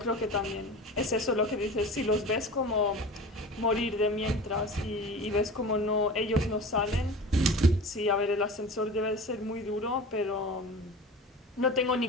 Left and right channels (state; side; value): normal; both; correlation 0.35